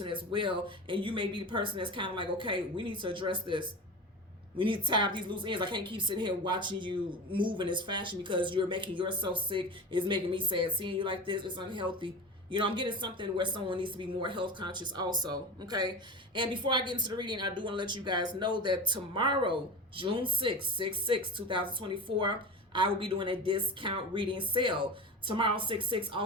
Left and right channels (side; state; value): both; normal; correlation 0.28